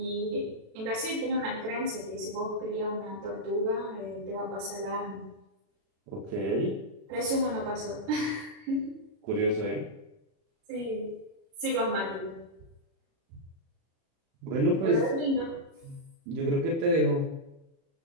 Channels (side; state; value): left; late; 36 ms